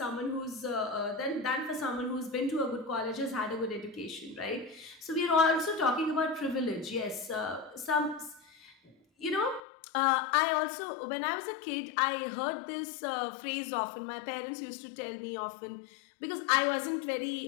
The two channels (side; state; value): right; drops out; at 9.6 s